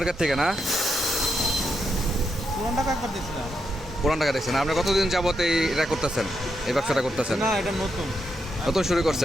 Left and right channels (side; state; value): both; normal; correlation 0.82